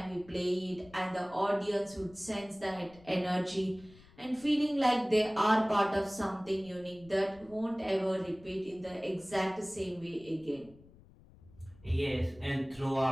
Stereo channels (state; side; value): noise; left; rumble, 24 dB below the sound